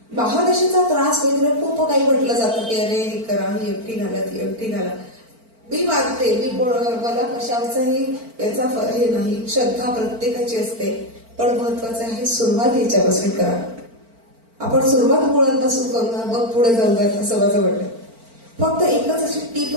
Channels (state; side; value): late; left; 4.4 ms